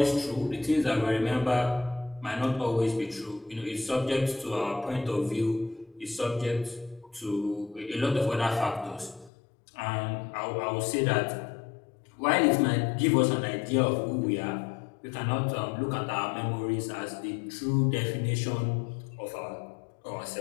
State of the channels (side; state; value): right; drops out; at 9.3 s